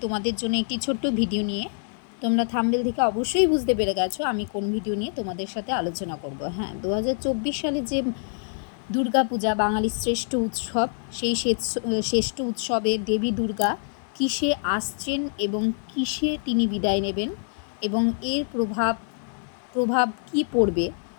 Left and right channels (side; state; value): right; silent; digital silence